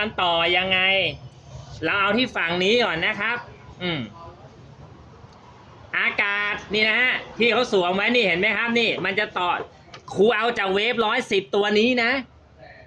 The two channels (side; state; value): both; identical; correlation 1.00